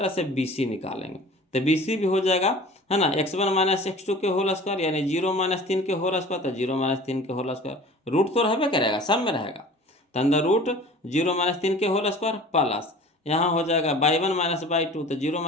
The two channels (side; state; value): both; normal; correlation 0.43